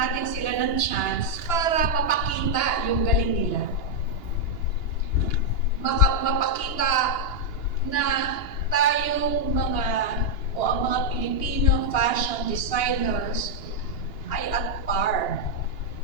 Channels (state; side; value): late; right; 2.8 ms